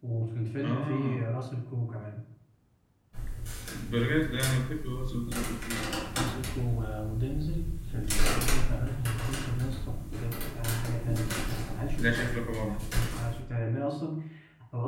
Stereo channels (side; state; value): both; identical; correlation 1.00